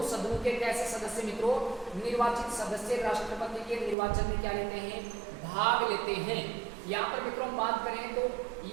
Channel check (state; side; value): drops out; left; at 4.0 s